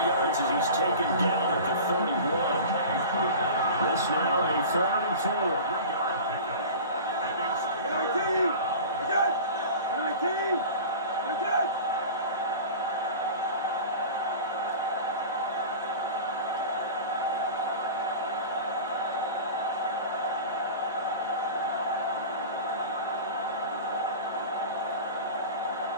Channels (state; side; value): inverted; both; correlation -0.35